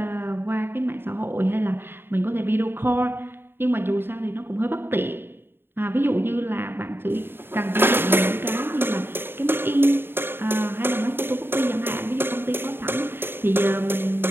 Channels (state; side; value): late; left; 0.11 ms